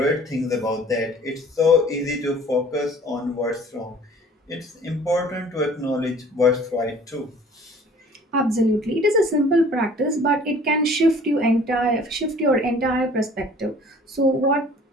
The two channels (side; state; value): both; normal; correlation 0.50